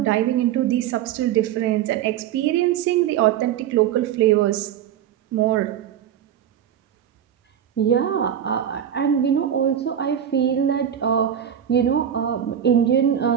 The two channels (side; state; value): left; quieter; 9.8 dB